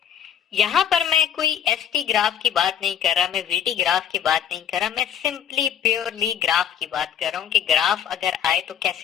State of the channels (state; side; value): quieter; right; 9.1 dB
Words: यहाँ पर मैं कोई एसटी ग्राफ की बात नहीं कर रहा, मैं वीटी ग्राफ की बात नहीं कर रहा, मैं सिंपली प्योरली ग्राफ की बात कर रहा हूँ कि ग्राफ अगर आए तो